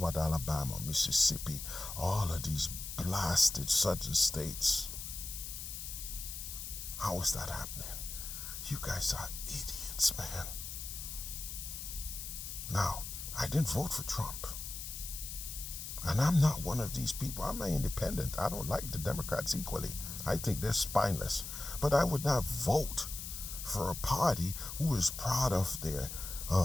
Alabama, Mississippi, all of these blasted southern states? How is that happening? You guys are idiots, man. Now, I didn't vote for Trump. And I'm not one of these people. I'm an independent. I don't like the Democrats equally. I think they're spineless. But I would not vote for a party who is proud of their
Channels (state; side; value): noise; left; hiss, 7 dB below the sound